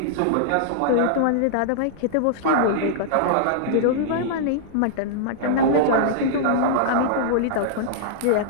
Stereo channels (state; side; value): different; both; correlation -0.02